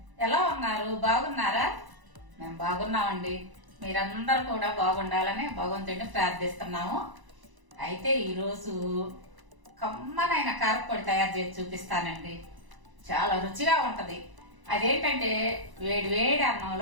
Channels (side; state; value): left; late; 1.0 ms